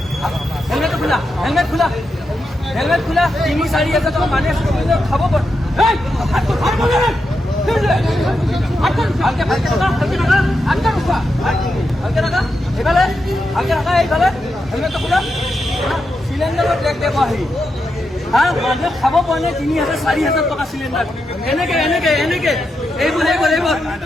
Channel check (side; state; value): both; normal; correlation 0.86